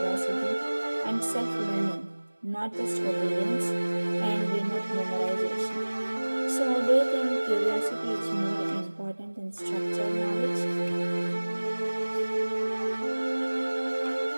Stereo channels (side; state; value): both; inverted; correlation -1.00